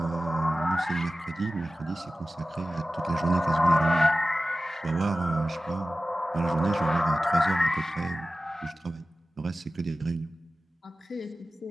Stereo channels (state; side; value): normal; both; correlation 0.95